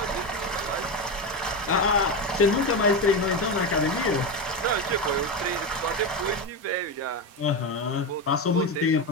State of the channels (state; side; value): normal; both; correlation 0.15